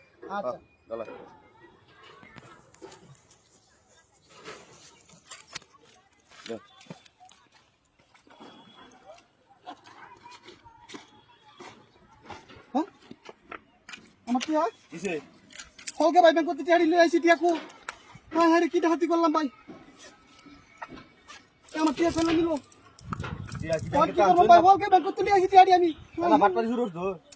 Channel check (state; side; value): identical; both; correlation 1.00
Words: আচ্ছা গলা হ্যাঁ আমার কি হয় কিসে হলকে ভাই ব্যাংক করতে টিয়াড়ি লই আইছি টিয়াকু হ্যাঁ হ্যাঁ কি হাতি করলাম ভাই আমার টিয়া ফেলে নিল ভাই হলকে ব্যাংক করতে লই আইছি টিয়াড়ি আমি না ফাটপাড়ি শুরু করছো